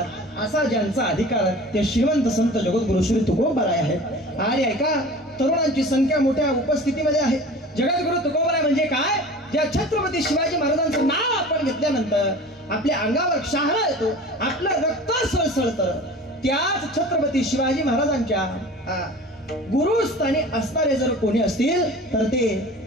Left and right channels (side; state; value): both; normal; correlation 0.40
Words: असा ज्यांचा अधिकार ते श्रीमंत संत जगद्गुरु श्री तुकोबराय आहे. आणि ऐका, तरुणांची संख्या मोठ्या उपस्थितीमध्ये आहे. जगद्गुरु तुकोबराय म्हणजे काय? ज्या छत्रपती शिवाजी महाराजांचं नाव आपण घेतल्यानंतर आपल्या अंगावर शहारा येतो, आपलं रक्त सळसळतं. त्याच छत्रपती शिवाजी महाराजांच्या गुरुस्थानी असणारे जर कोणी असतील तर ते